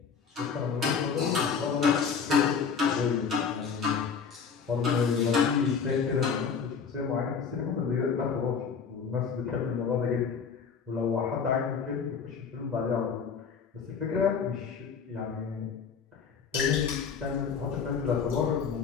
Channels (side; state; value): right; quieter; 6.1 dB